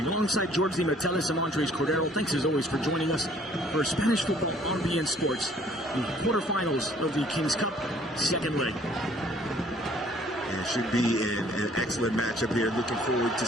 Alongside George Di Metellis and Andres Cordero, thanks as always for joining us for Spanish football on BN Sports. The quarterfinals of the King's Cup, second leg. It should be an excellent matchup here. Looking forward to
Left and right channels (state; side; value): normal; both; correlation 0.58